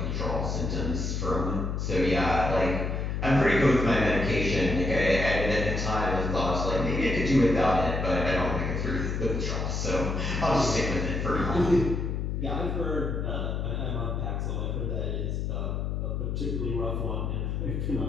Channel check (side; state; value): left; noise; hum, 1 dB below the sound